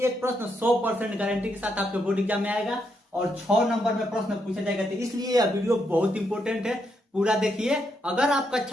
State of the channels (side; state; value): both; normal; correlation 0.79